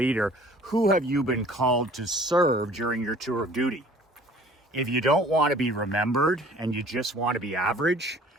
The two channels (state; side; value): normal; both; correlation 0.51